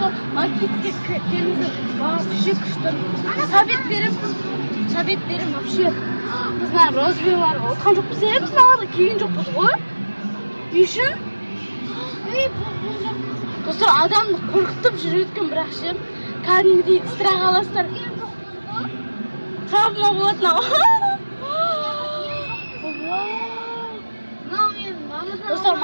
maketga keldi. Вообще kuchli. Sovet berim вообще. Bizlar rozviyalar o'tgan jo'qmiz, bizlar keyin jo'qmiz qo'y. Yushin. Do'stlar, odamni qo'rqitib yurayotgan bir yaxshi. Qanday istirah olasizlar. Travma bo'ladi. Do'stlar,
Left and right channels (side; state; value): both; inverted; correlation -1.00